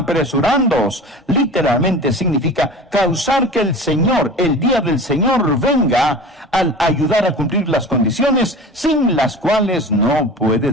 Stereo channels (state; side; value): normal; both; correlation 0.36